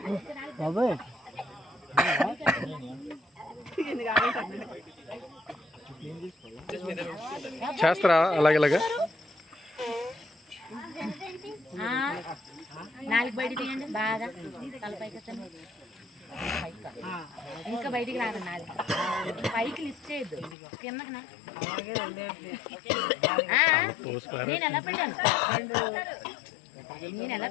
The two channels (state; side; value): drops out; right; at 20.6 s